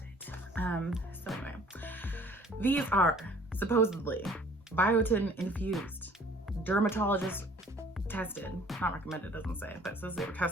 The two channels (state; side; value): normal; both; correlation 0.54